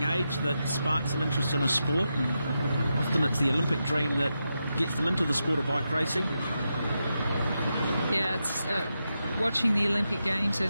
age that sparks an interest in a sport. And often it's the Olympic dream that gets them into the sport of bike racing. Yeah, it's watching the Olympic Games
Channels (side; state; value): both; inverted; correlation -0.87